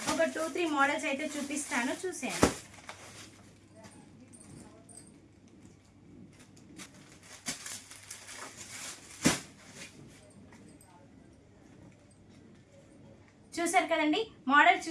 ఒక 2-3 మోడల్స్ అయితే చూపిస్తాను, చూసేయండి. చూసారు కదండి, మోడల్స్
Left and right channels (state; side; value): identical; both; correlation 1.00